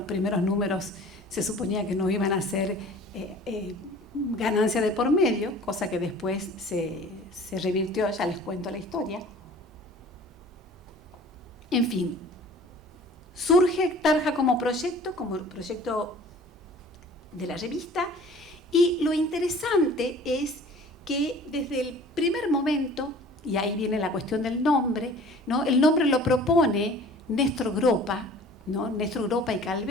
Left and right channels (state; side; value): normal; both; correlation 0.46